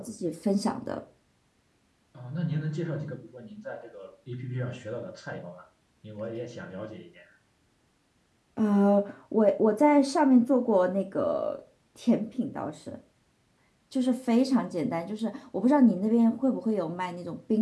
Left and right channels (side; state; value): both; identical; correlation 1.00